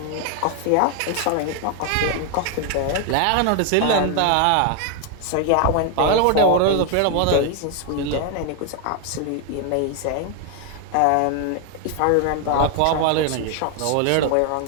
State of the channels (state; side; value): different; both; correlation 0.00